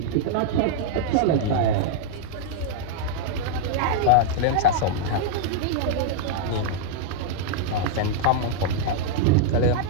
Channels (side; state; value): both; different; correlation -0.01